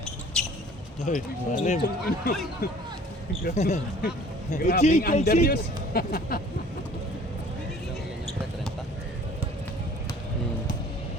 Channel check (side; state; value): both; normal; correlation 0.50